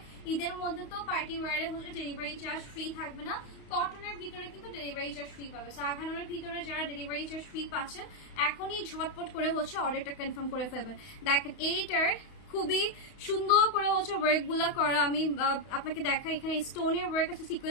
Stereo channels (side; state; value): right; late; 32 ms